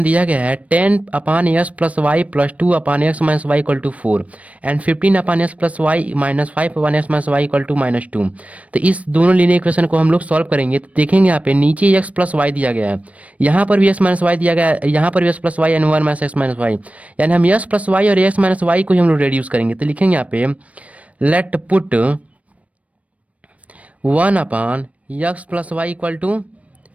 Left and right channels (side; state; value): left; late; 0.066 ms